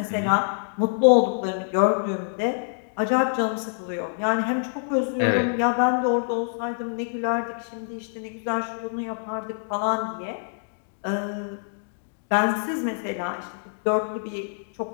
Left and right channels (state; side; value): silent; right; digital silence